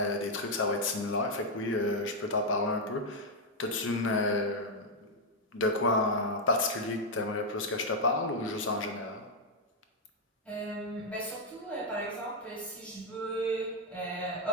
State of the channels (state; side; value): normal; both; correlation 0.00